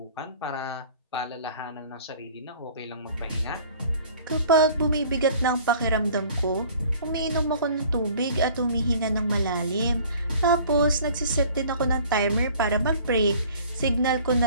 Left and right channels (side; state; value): both; inverted; correlation -0.50